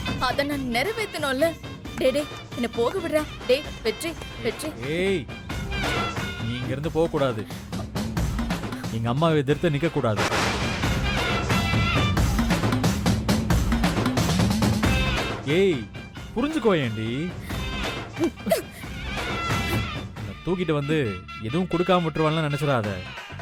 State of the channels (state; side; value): identical; both; correlation 1.00